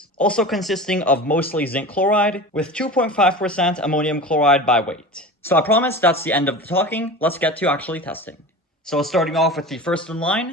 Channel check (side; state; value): both; normal; correlation 0.33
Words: also consisting of mostly zinc chloride with 2.5% ammonium chloride by weight. So I promise that's the end of the talking. Let's get to actually testing. So starting off with the first in